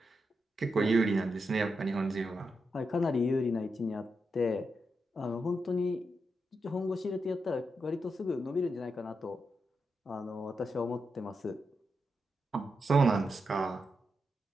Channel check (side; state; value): both; normal; correlation 0.85